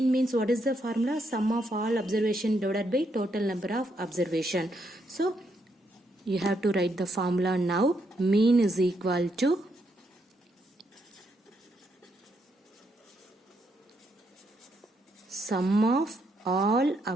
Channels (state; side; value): normal; both; correlation 0.77